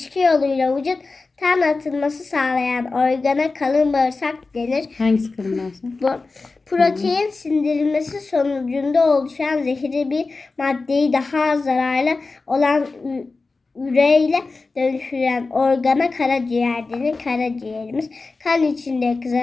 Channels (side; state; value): right; quieter; 3.8 dB